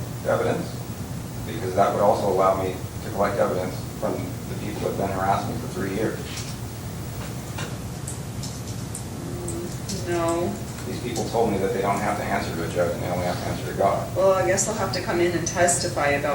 evidence? Because that would also allow me to collect evidence from the people that have been harassing me for 3 years. No. These people told me that they don't have to answer to a judge and they only have to answer to God. Well, I guess they'll have to come in and testify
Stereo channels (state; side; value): identical; both; correlation 1.00